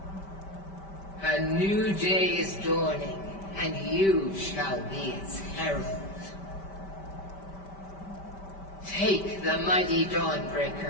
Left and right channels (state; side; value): late; right; 5.1 ms